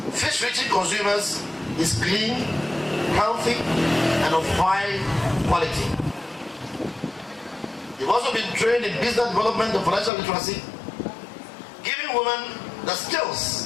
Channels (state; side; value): drops out; right; at 10.1 s